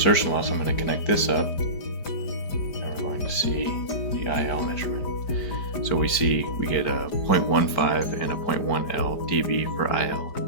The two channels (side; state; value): right; late; 5.0 ms